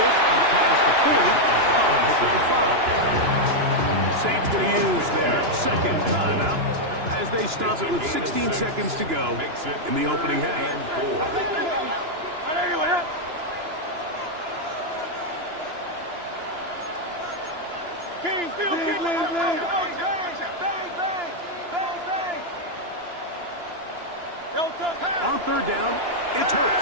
up past the 40. Pick up the 5. Saints going to use their 2nd timeout as they stop it with 16 seconds to go in the opening half. On 3rd down, it's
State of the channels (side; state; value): left; late; 2.9 ms